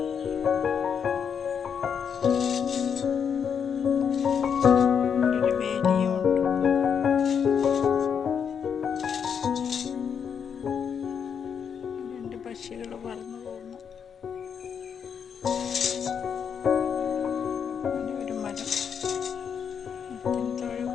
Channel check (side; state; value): right; quieter; 7.3 dB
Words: ഒരു വേലിയും ഉണ്ട്. രണ്ട് പക്ഷികൾ പറന്നു പോകുന്നു. ഒരു മരം, മരത്തിന് താഴെ